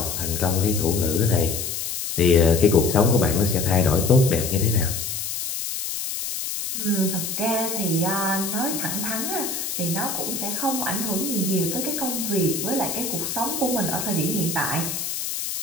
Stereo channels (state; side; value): noise; left; hiss, 4 dB below the sound